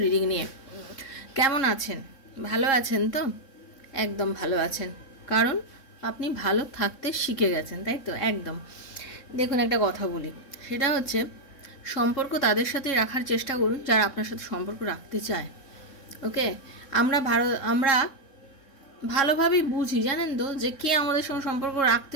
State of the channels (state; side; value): late; right; 3.6 ms